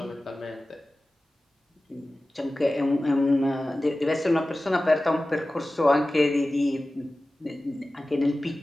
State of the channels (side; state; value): both; normal; correlation 0.96